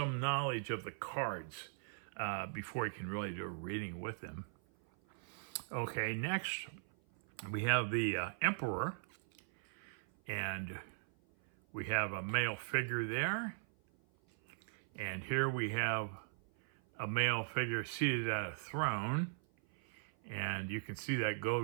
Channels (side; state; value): left; silent; 52 dB below the other